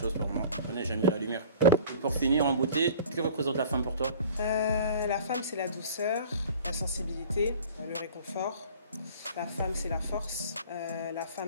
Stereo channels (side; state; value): both; inverted; correlation -0.44